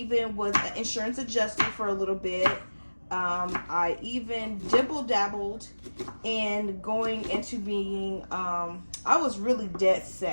was an insurance adjuster for a little bit. I even dabbled in going into being, I was really dead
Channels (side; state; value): both; inverted; correlation -1.00